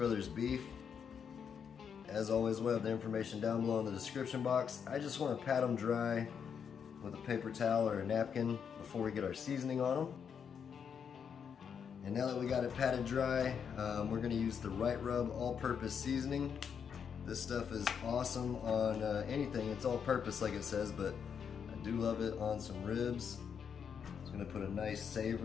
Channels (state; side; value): quieter; right; 7.2 dB